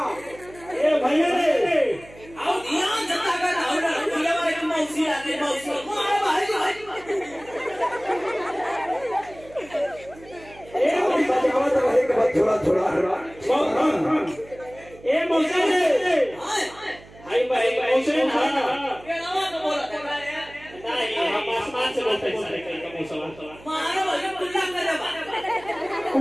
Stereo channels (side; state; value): right; noise; hum, 21 dB below the sound